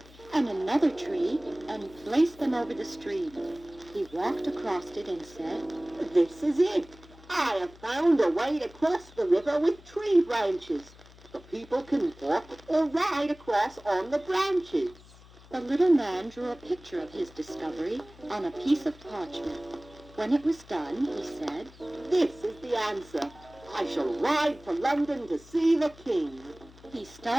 and another tree and placed them over the stream. He walked across it and said, This is it. I have found a way to cross the river with tree branches. The people can walk or ride across on the branches. The little man drew a picture of his discovery on a piece of parchment. When it was done, he said, This is the answer. I shall ride for London to see the king. He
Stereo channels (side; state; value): left; noise; hum, 22 dB below the sound